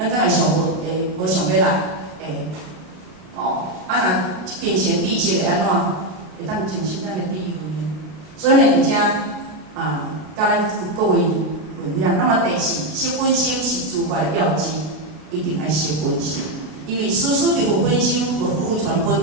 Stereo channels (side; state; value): left; late; 32 ms